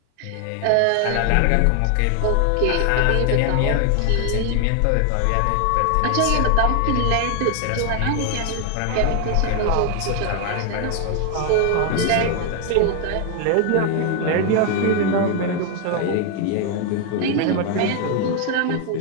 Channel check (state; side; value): different; both; correlation 0.00